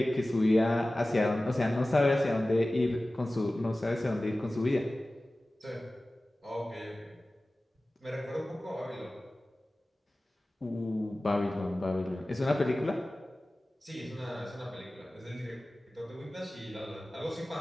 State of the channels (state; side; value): normal; both; correlation 0.97